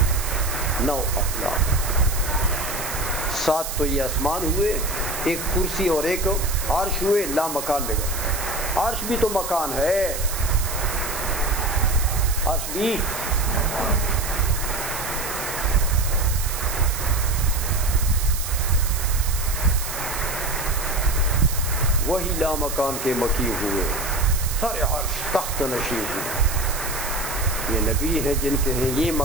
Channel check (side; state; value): right; noise; hiss, 6 dB below the sound